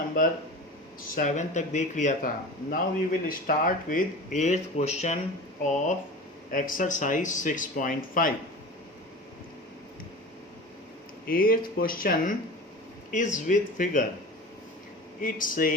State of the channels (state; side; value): normal; both; correlation 0.33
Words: 7 तक देख लिया था। Now we will start with 8th question of exercise 6.5। 8th question is with figure. It